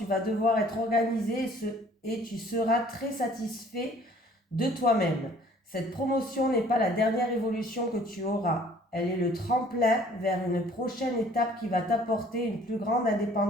vas devoir être organisé et tu seras très satisfait de toi-même. Cette promotion n'est pas la dernière évolution que tu auras. Elle est le tremplin vers une prochaine étape qui va t'apporter une plus grande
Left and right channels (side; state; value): both; normal; correlation 0.55